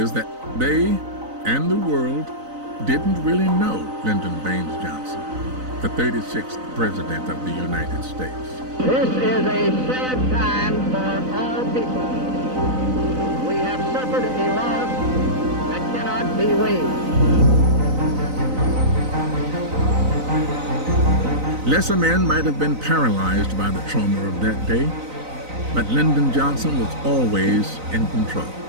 that they and the world didn't really know Lyndon Baines Johnson, the 36th President of the United States. This is a sad time for all people. We have suffered a loss that cannot be weighed. Lesser men might have been paralyzed by the trauma of that day, but Lyndon Johnson was always in control.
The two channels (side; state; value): left; late; 3.9 ms